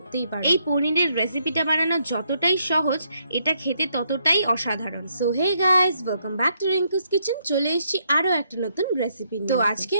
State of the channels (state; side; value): inverted; both; correlation -0.74